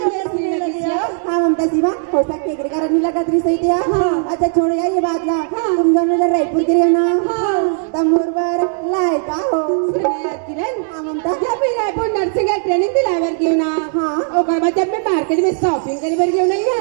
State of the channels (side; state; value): left; silent; 59 dB below the other